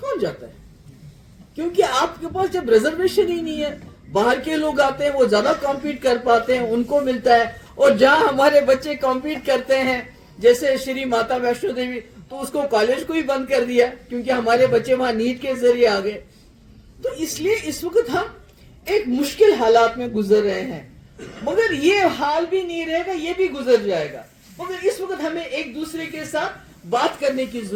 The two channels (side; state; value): both; identical; correlation 1.00